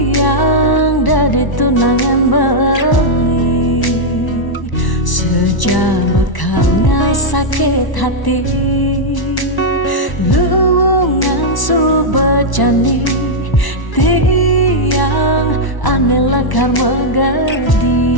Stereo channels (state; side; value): late; right; 1.1 ms